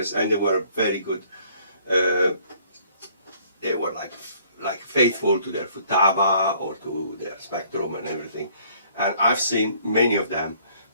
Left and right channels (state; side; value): inverted; both; correlation -0.60